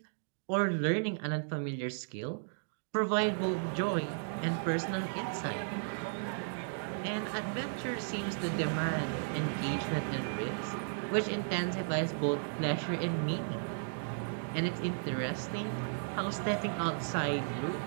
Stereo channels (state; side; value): silent; left; digital silence